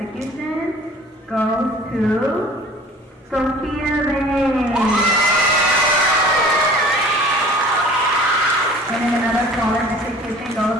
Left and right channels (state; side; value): normal; both; correlation 0.47